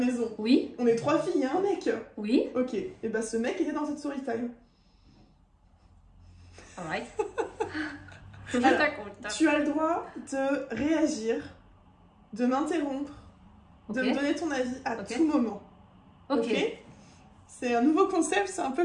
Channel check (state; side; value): identical; both; correlation 1.00